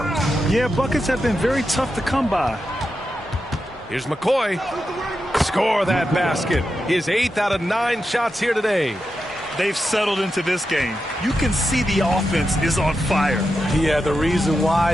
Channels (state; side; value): normal; both; correlation 0.88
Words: Yeah, buckets have been very tough to come by. Here's McCoy. Score that basket. His 8th out of 9 shots here today. They've settled into this game. You can see the offense is on fire. Yeah, the reason